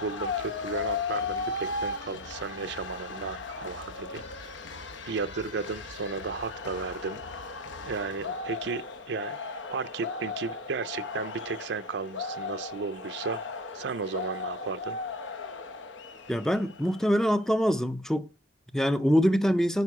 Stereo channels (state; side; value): normal; both; correlation 0.46